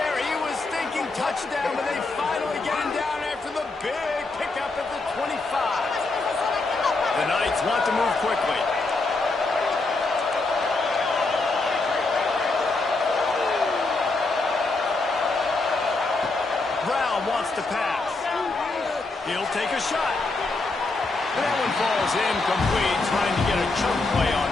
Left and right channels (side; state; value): right; quieter; 3.4 dB